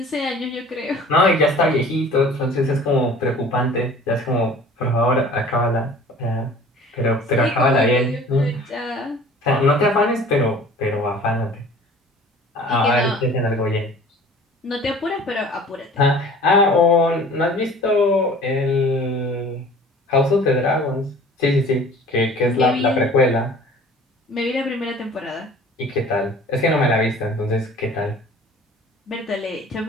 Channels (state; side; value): normal; both; correlation 0.47